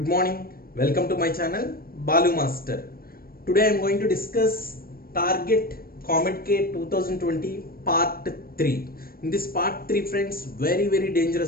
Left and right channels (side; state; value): right; late; 0.43 ms